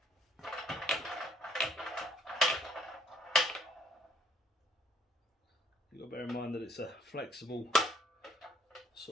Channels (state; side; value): normal; both; correlation 0.64